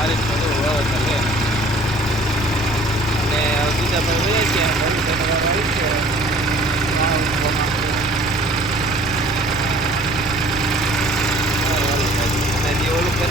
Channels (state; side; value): noise; right; rumble, 13 dB below the sound